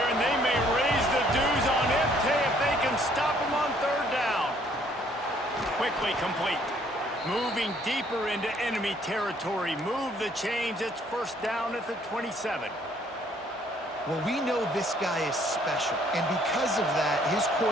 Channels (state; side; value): normal; both; correlation 0.63